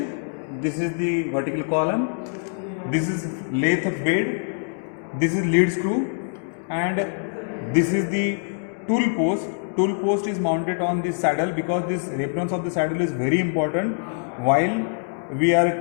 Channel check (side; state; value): right; silent; 63 dB below the other